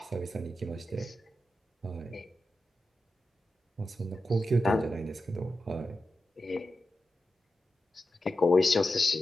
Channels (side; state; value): both; normal; correlation 0.91